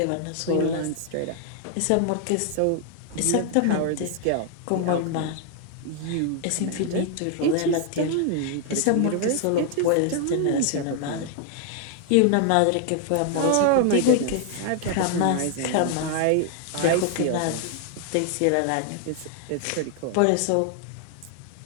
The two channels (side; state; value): both; different; correlation 0.00